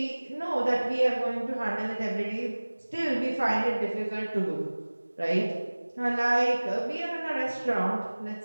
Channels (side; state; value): both; inverted; correlation -1.00